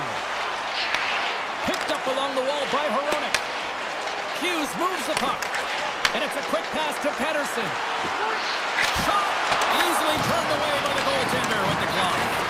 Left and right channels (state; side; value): identical; both; correlation 1.00